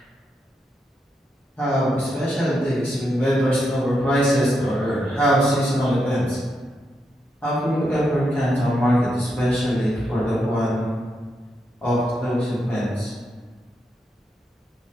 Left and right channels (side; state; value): both; normal; correlation 0.82